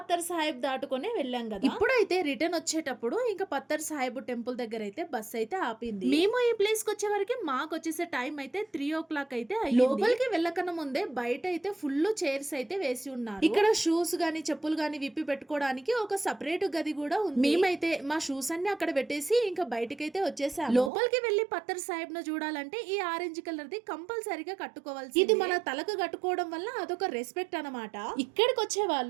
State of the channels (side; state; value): left; drops out; at 20.9 s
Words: సాహిబ్ దాటుకునే వెళ్ళాం కదా. ఇప్పుడైతే రిటర్న్ వచ్చేటప్పుడు ఇంకా పత్తర్ సాహిబ్ టెంపుల్ దగ్గర అయితే బస్ అయితే ఆపింది. మేము ఈ ప్లేస్ కి వచ్చే వరకు మాకు వచ్చేసే టైం అయితే 3 o'clock అయితే అయ్యింది. లోపలికి వెళ్ళకన్నా ముందే బయట అయితే ఫుల్ చైర్స్ అయితే వేసి ఉన్నారు. ఇక్కడ షూస్ గానీ చెప్పులు గానీ విప్పి పెట్టుకోవడానికి ఒక సపరేట్ గది కూడా ఉంది. మేమైతే మా షూస్ అన్ని అక్కడ పెట్టేసి ఇంకా బయటకైతే వచ్చేసాము. లోపలికి వెళ్లి పత్తర్ సాహిబ్ ను చూడాలంటే ఈ ఆరెంజ్ కలర్ ది కంపల్సరీగా కట్టుకోవాల్సి. ఇది మన తలకు కట్టుకోవడం వల్ల అదొక రెస్పెక్ట్ అన్నమాట. ఇక్కడికి వచ్చే